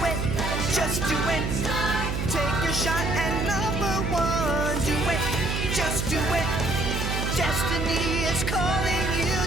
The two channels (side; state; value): right; noise; hum, 2 dB below the sound